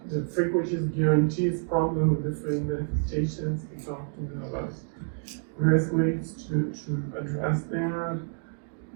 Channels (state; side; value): silent; left; 59 dB below the other